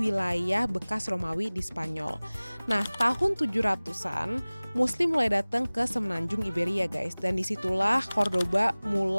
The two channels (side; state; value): both; inverted; correlation -1.00